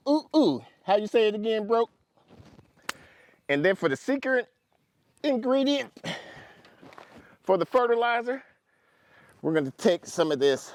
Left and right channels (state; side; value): identical; both; correlation 1.00